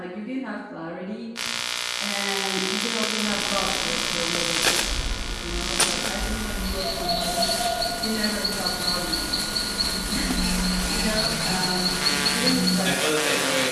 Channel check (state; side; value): identical; both; correlation 1.00